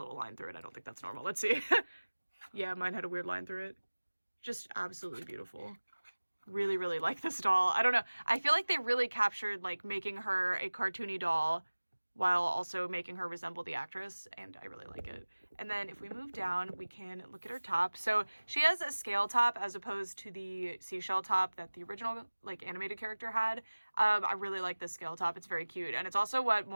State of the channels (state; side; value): inverted; both; correlation -1.00